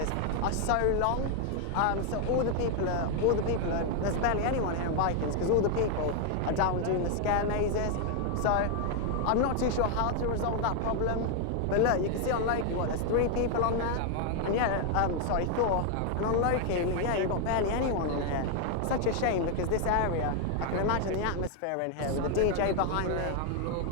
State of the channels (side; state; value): both; different; correlation 0.00